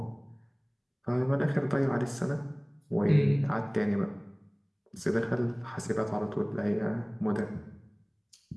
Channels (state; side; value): identical; both; correlation 1.00